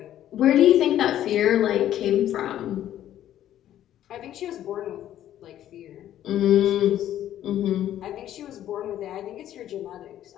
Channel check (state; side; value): quieter; right; 11.9 dB